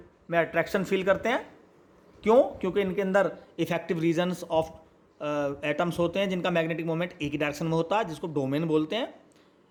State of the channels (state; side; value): identical; both; correlation 1.00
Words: में अट्रैक्शन फील करते हैं। क्यों, क्योंकि इनके अंदर इफेक्टिव रीजन्स ऑफ एटम्स होते हैं जिनका मैग्नेटिक मोमेंट एक ही डायरेक्शन में होता है, जिसको डोमेन बोलते हैं।